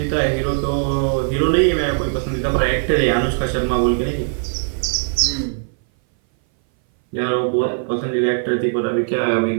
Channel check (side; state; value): left; silent; 60 dB below the other